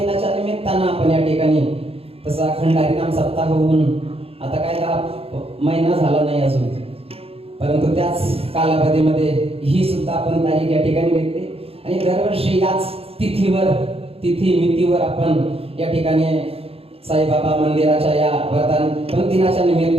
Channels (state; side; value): late; left; 0.28 ms